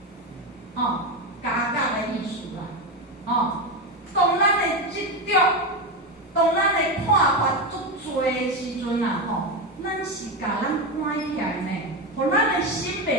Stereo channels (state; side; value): normal; both; correlation 0.14